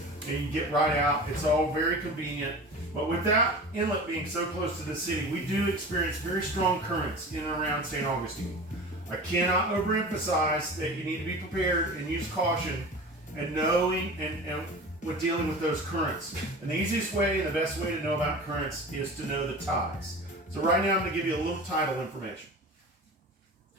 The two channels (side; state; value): both; normal; correlation 0.35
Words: and you can get right out. It's all very convenient. But with that inlet being so close to the city, we do experience very strong currents in and around St. Augustine. I cannot overemphasize that you need to be prepared and use caution and knowing and with dealing with those currents. And the easiest way and the best way to know about currents is to know the tides. So right now I'm going to give you a little tidal information.